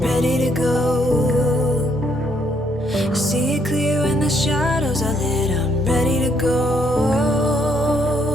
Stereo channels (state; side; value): noise; right; rumble, 24 dB below the sound